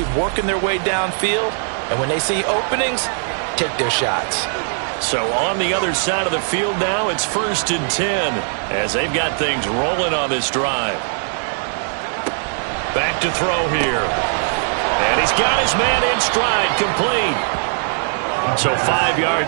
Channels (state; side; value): silent; left; digital silence